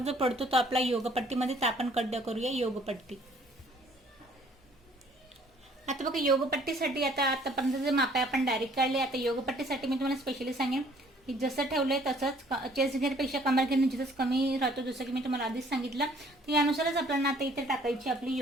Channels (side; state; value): both; normal; correlation 0.59